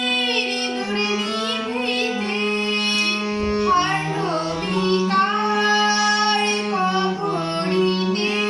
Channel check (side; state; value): both; identical; correlation 1.00